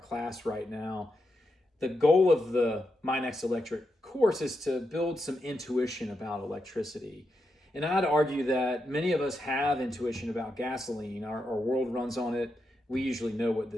right now. The goal of the My Next Electric course is to build some intuition about electricity. And I'd argue that many of us have intuition about gasoline. Our world runs on it. We usually know what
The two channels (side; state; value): both; normal; correlation 0.85